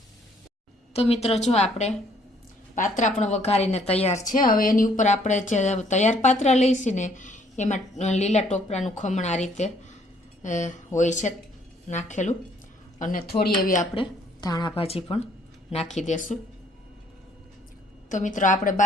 તો મિત્રો જો આપણે પાત્રા પણ વઘારીને તૈયાર છે. હવે એની ઉપર આપણે જે તૈયાર પાત્રા લઈશું ને એમાં લીલા ટોપરાનું ખમણ આ રીતે હોય છે નાખેલું અને થોડી એવી આપણે ધાણા ભાજી પણ નાખી દેશું. તો મિત્રો આપણે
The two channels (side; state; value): both; normal; correlation 0.64